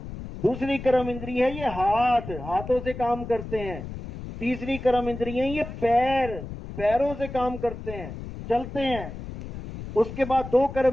दूसरी कर्म इंद्री है ये हाथ, हाथों से काम करते हैं। तीसरी कर्म इंद्री है ये पैर, पैरों से काम करते हैं, चलते हैं। उसके बाद 2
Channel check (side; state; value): left; noise; rumble, 10 dB below the sound